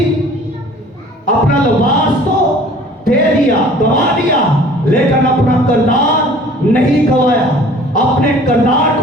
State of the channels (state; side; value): normal; both; correlation 0.49